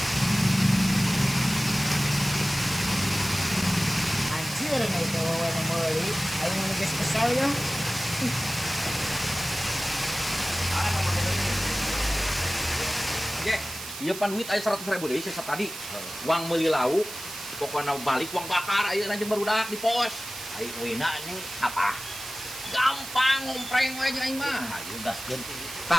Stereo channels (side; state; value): right; noise; hiss, 10 dB below the sound